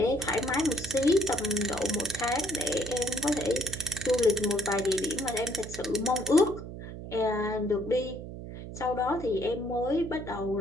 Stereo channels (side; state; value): right; noise; hum, 10 dB below the sound